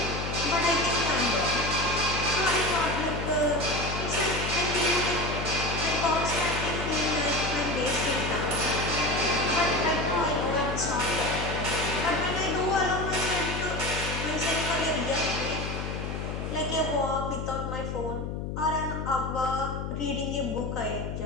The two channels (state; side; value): noise; left; hum, 4 dB below the sound